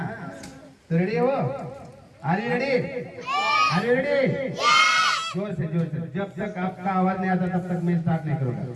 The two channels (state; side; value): identical; both; correlation 1.00